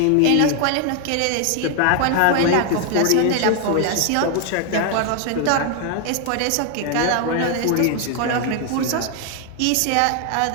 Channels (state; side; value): different; both; correlation 0.00